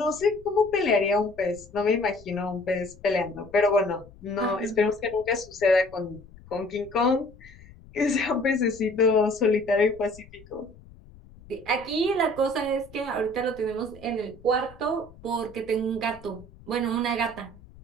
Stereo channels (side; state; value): left; noise; rumble, 22 dB below the sound